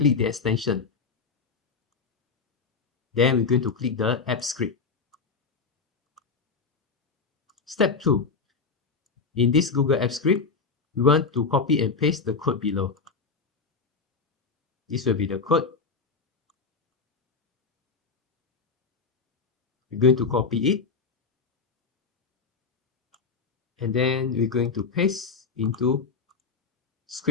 the extension. Then we're going to click the App Script. Step 2. In this Google Apps Script, we want to copy and paste the code below. This will be the code. We're going to copy it. And then we're going to paste into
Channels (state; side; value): quieter; right; 4.8 dB